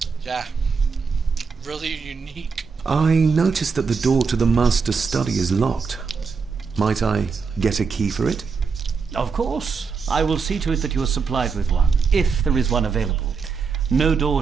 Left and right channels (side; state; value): left; quieter; 5.3 dB